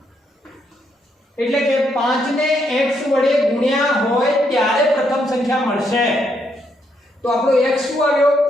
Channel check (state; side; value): normal; both; correlation 0.76